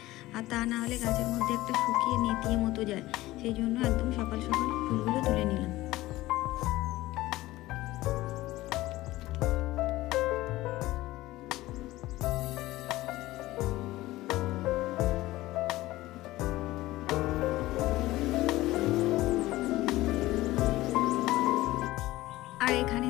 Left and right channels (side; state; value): right; quieter; 17.5 dB